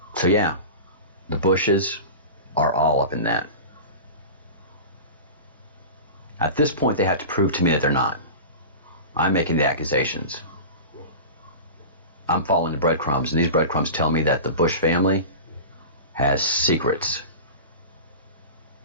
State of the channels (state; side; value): inverted; both; correlation -0.31